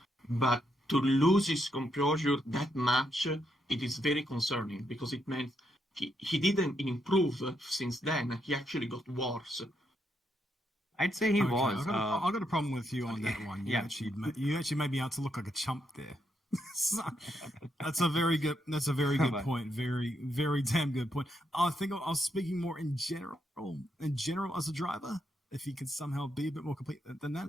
but to lose his composure that much, it is very concerning because it meant he didn't improve since then. He actually got worse. I'd say he Okay, was. I've got a problem with you on that one. Yeah. You actually made me out to look like a chump there. So, that's a very good point. Very damn good point. I think I was speaking more in general as a driver. If he could somehow be a bit more complete than that.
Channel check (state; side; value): normal; both; correlation 0.79